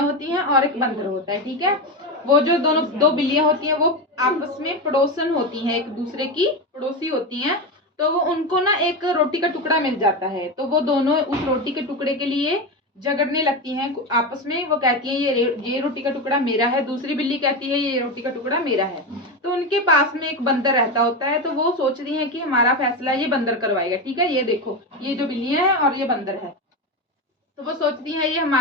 होती हैं और एक बंदर होता है, ठीक है। वो जो दोनों दो बिल्लियां होती हैं वो आपस में पड़ोसन होती हैं, एक दूसरे की पड़ोसी होती हैं। तो वो उनको ना एक रोटी का टुकड़ा मिल जाता है, तो वो दोनों उस रोटी के टुकड़े के लिए झगड़ने लगती हैं आपस में। वो कहती है ये रोटी का टुकड़ा मेरा है, दूसरी बिल्ली कहती है ये रोटी का टुकड़ा मेरा है। तो उनके पास में एक बंदर रहता होता है, तो वो सोचती हैं कि हमारा फैसला ये बंदर करवाएगा, ठीक है। ये देखो, ये जो बिल्लियां हैं और ये बंदर है, तो वो सोचती है ये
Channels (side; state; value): both; normal; correlation 0.16